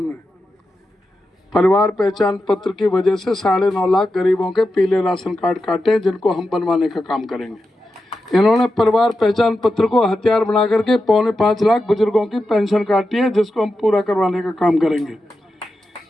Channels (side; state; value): both; normal; correlation 0.90